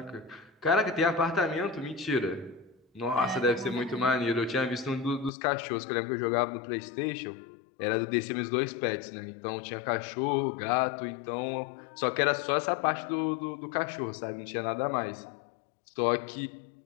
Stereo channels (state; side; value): drops out; right; at 5.3 s